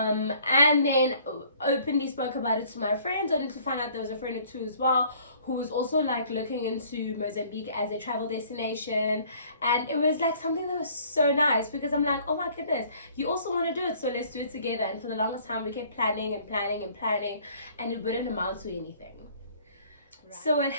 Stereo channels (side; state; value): both; inverted; correlation -0.56